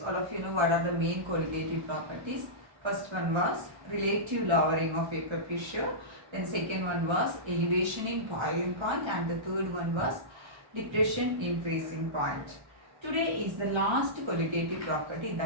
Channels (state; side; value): late; left; 1.3 ms